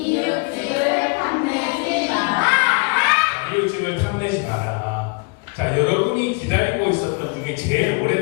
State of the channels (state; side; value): quieter; right; 31.1 dB